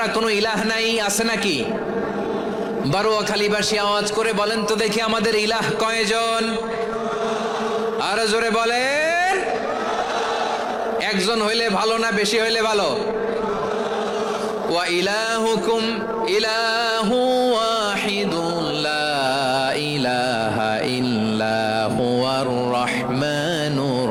কোনো ইলাহ নাই। আছে নাকি? বারোয়াখালীবাসী আওয়াজ করে বলেন তো দেখি আমাদের ইলাহ কয়জন? আরো জোরে বলেন। একজন হইলে ভালো না বেশি হইলে ভালো? ওয়া ইলাহুকুম ইলাহু ওয়াহিদুন লা ইলাহা ইল্লা হুয়ার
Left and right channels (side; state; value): both; identical; correlation 1.00